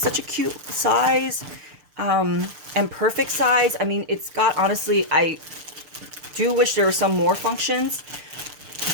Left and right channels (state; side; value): late; left; 6.8 ms